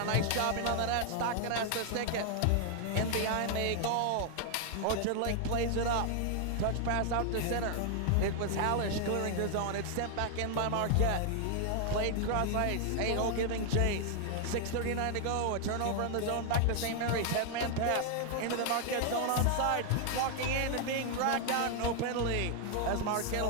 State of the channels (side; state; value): both; different; correlation 0.00